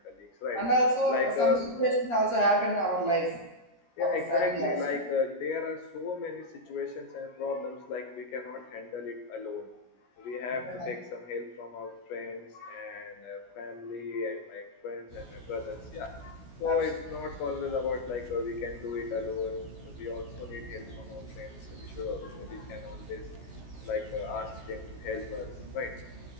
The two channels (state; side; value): late; right; 17 ms